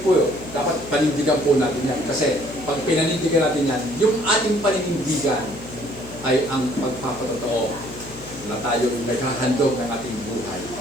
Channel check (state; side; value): noise; left; hum, 16 dB below the sound